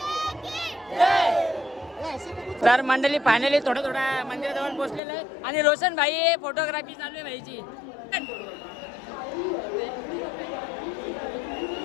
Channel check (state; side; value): drops out; right; at 5.0 s